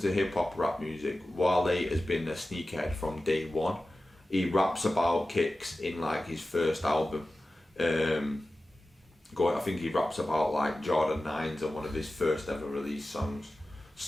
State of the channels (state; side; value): normal; both; correlation 0.95